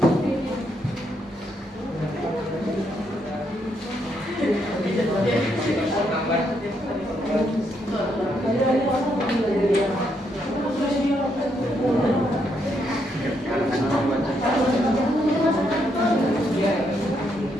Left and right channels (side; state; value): both; normal; correlation 0.77